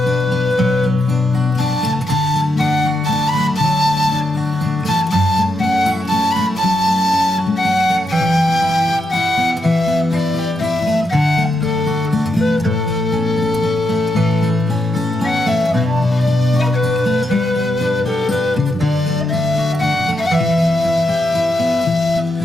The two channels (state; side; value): normal; both; correlation 0.83